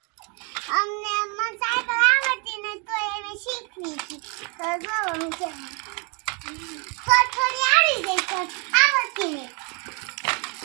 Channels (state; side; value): quieter; left; 34.2 dB